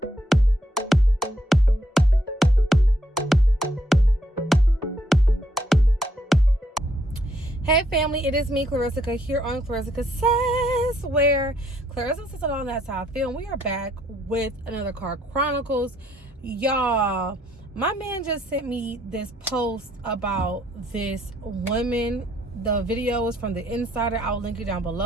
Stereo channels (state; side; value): normal; both; correlation 0.71